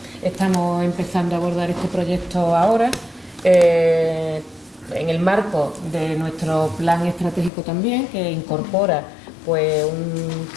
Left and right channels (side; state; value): right; drops out; at 7.5 s